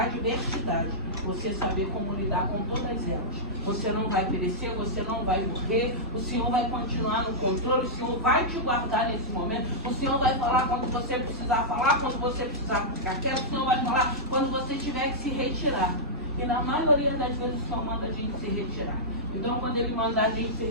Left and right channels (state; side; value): normal; both; correlation -0.12